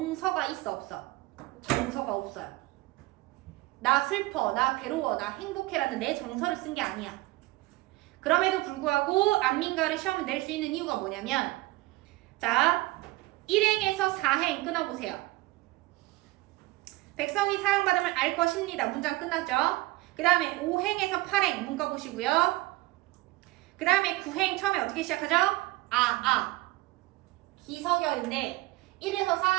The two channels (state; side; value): quieter; left; 20.0 dB